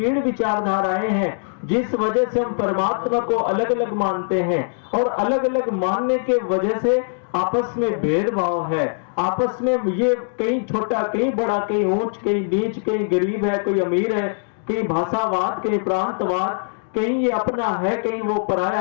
विचारधाराएं हैं जिस वजह से हम परमात्मा को अलग अलग मानते हैं, और अलग अलग मानने के वजह से आपस में भेदभाव है। आपस में ये कहीं छोटा कहीं बड़ा, कहीं ऊंच कहीं नीच, कहीं गरीब है कोई अमीर है, कहीं भाषावाद कहीं प्रांतवाद, कहीं ये अपना है कहीं वो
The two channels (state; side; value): silent; right; digital silence